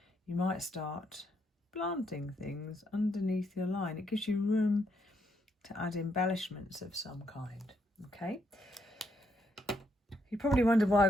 you might start planting things underneath your line. It gives you room to add embellishments of some kind, okay? You probably wondered why I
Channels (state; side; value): normal; both; correlation 0.76